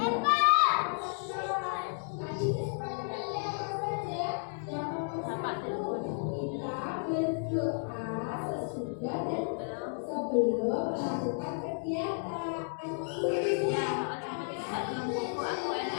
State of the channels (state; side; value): silent; right; digital silence